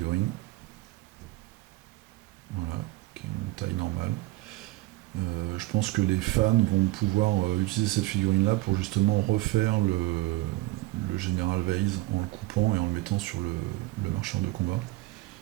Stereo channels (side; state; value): left; quieter; 18.6 dB